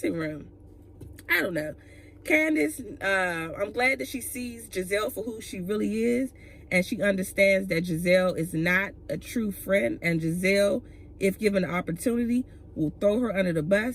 room. I don't know. Candace, I'm glad that she sees Giselle for who she really is, and she understands that Giselle is not a true friend, and Giselle, if given the opportunity, will throw her under the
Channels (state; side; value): identical; both; correlation 1.00